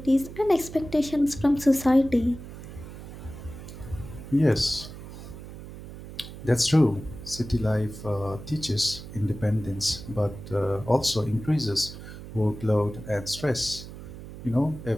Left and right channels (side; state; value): right; noise; hum, 13 dB below the sound